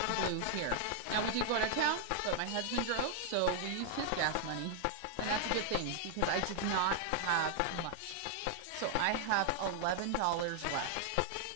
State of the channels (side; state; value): both; different; correlation 0.00